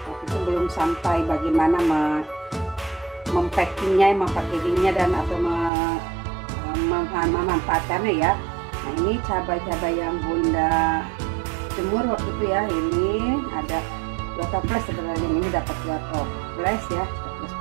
Belum sampai bagaimana mempackagingnya dan atau memanfaatkannya ya. Nah, ini cabai-cabai yang Bunda jemur waktu itu ya, ini ada 2 toples sebenarnya, ini dapat 2 toples ya,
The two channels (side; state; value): left; drops out; at 5.7 s